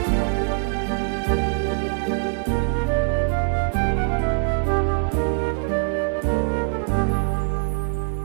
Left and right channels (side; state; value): left; silent; digital silence